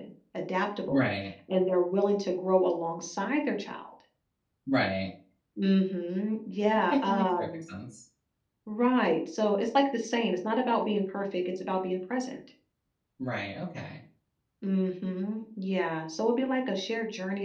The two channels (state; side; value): identical; both; correlation 1.00